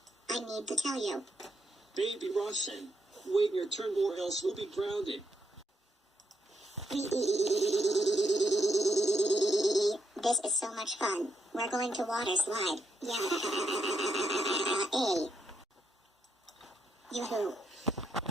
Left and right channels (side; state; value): both; normal; correlation 0.80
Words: I need to tell you. Baby Roshan, wait your turn or else we'll be grounded. This is so much fun. We're going to water slide. Yeah. Yoo-hoo.